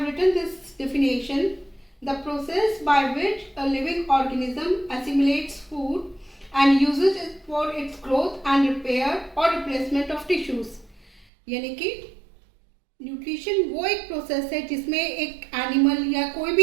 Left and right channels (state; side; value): drops out; left; at 11.2 s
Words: written this definition: the process by which a living organism assimilates food and uses it for its growth and repair or replacement of tissues. यानी कि nutrition वो एक process है जिसमें एक animal या कोई